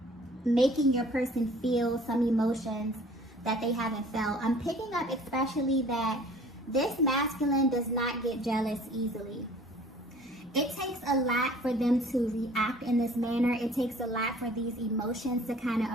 making your person feel some emotions that they haven't felt. I'm picking up especially that this masculine does not get jealous easily. It takes a lot for them to react in this manner. It takes a lot for these emotions to kind of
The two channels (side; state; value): both; normal; correlation 0.51